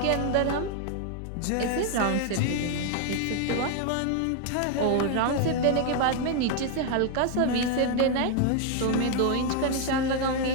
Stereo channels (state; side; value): different; both; correlation 0.00